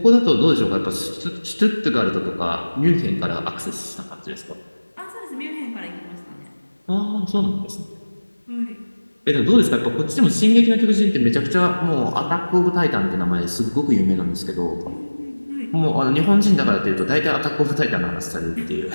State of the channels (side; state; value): both; inverted; correlation -1.00